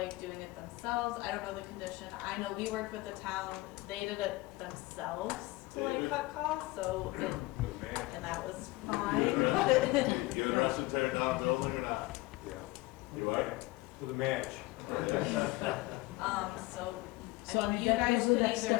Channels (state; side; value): quieter; right; 20.9 dB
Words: doing it themselves. I don't know the condition. I know we worked with the town, they did it themselves to like cut costs, so and that was fine. You interested in tearing down a building or not? Yeah. You are? With a match. So So, I mean, you guys could that's- either